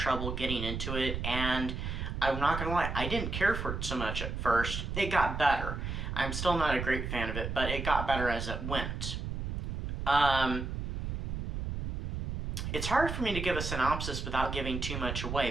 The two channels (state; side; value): noise; right; rumble, 4 dB below the sound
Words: getting into it, and I'm not gonna lie, I didn't care for it so much at first. It got better. I'm still not a great fan of it, but it got better as it went. It's hard for me to give a synopsis without giving too much